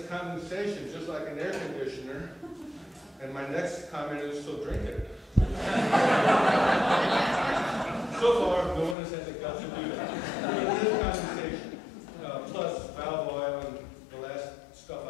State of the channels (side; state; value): right; drops out; at 9.0 s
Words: condensation, just like an air conditioner. And my next comment is, so drink it. So far, no one has had the guts to do that. But it is condensation, plus valve oil and the last stuff I